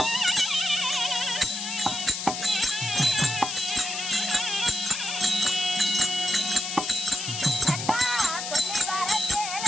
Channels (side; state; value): left; noise; hiss, 4 dB below the sound